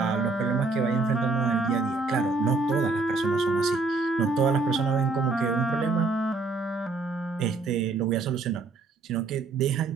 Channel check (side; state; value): left; quieter; 3.8 dB